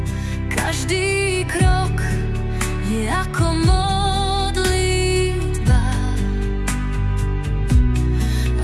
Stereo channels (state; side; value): identical; both; correlation 1.00